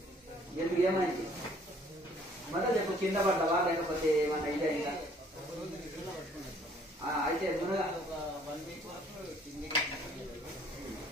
ఎందుకు ఏమైంది మొదలు చెప్పు, కింద పడ్డవా లేకపోతే ఏమన్నా ఇదైందా? అయితే మునగా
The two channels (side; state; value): both; normal; correlation 0.59